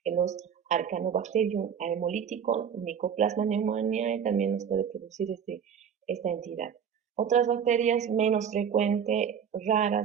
los Arcanobacterium hemolítico, Mycoplasma pneumoniae también nos puede producir esta entidad. Otras bacterias menos frecuentes,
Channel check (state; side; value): quieter; left; 7.8 dB